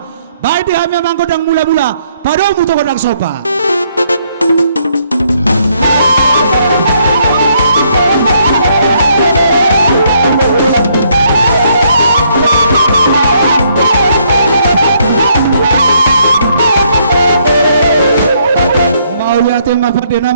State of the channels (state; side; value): inverted; both; correlation -0.70